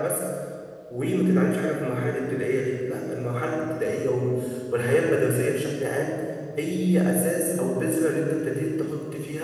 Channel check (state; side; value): identical; both; correlation 1.00